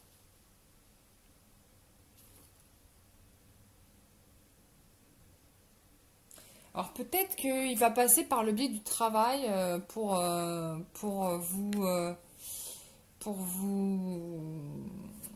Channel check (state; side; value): identical; both; correlation 1.00